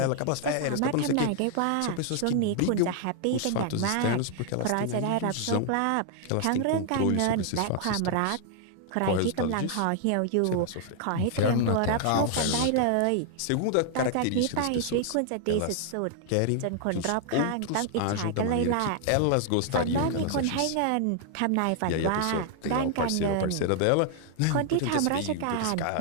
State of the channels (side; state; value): both; different; correlation 0.00